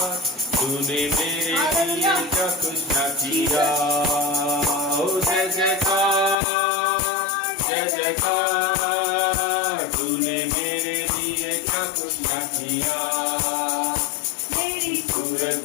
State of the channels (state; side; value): drops out; right; at 6.4 s